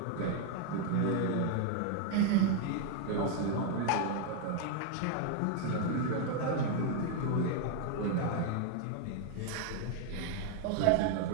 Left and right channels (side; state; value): both; different; correlation 0.00